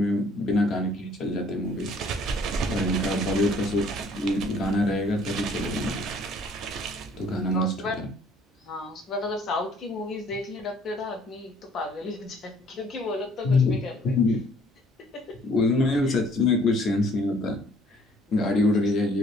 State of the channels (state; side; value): normal; both; correlation 0.59